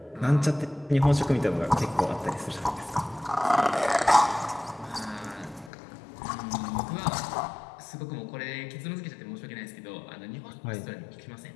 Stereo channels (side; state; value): right; drops out; at 5.7 s